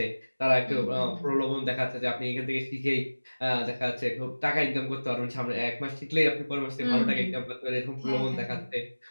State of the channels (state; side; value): inverted; both; correlation -1.00